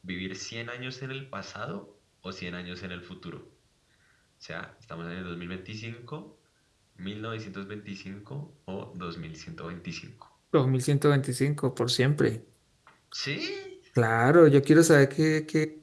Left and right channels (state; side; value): identical; both; correlation 1.00